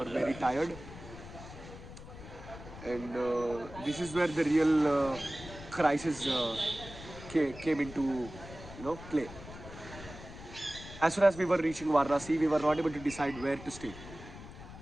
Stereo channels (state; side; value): noise; left; rumble, 14 dB below the sound